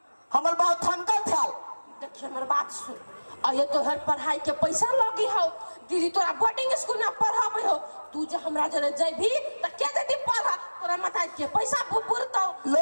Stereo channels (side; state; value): both; inverted; correlation -1.00